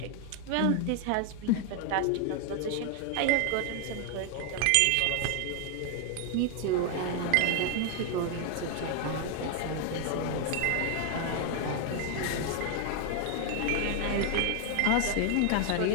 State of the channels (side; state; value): both; different; correlation 0.00